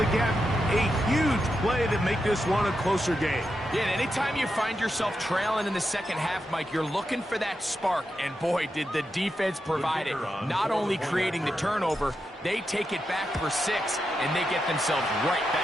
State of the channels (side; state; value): both; normal; correlation 0.87